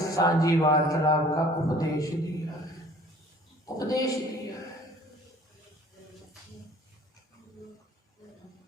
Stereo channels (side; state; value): both; normal; correlation 0.51